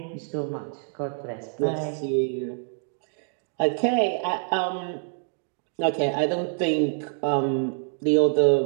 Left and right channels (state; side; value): silent; left; digital silence